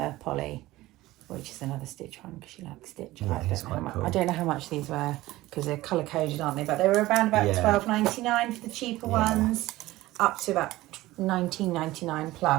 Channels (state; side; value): quieter; left; 17.5 dB